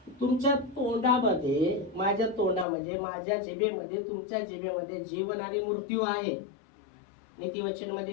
तुमच्या तोंडामध्ये, माझ्या तोंडामध्ये, माझ्या जिभेमध्ये, तुमच्या जिभेमध्ये जीवन आणि मृत्यू आहे. नीतिवचन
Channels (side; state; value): right; drops out; at 2.7 s